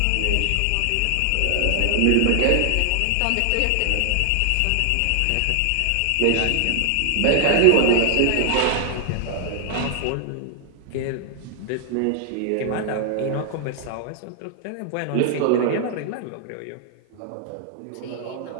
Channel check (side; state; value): both; different; correlation 0.00